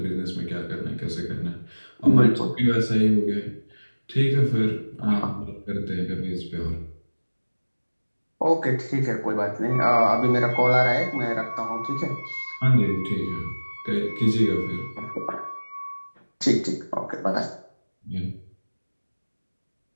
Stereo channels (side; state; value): both; inverted; correlation -1.00